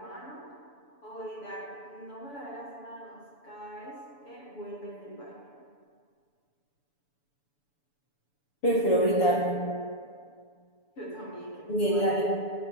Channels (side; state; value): right; late; 7.0 ms